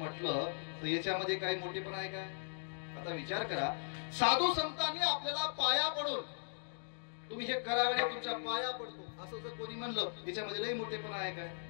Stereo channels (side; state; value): right; silent; digital silence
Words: तर याच्यामध्ये काही मोठेपणा आहे काय? आता विचार करा, साधू संतांनी आपल्याला पाया पडून तुम्ही हे करावे, तुमच्या पाया पडतो असं जर कोणी म्हणलं याच्यामध्ये लई मोठेपणा आहे काय?